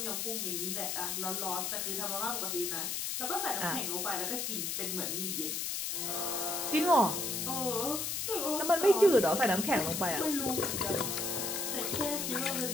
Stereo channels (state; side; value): noise; left; hiss, 1 dB below the sound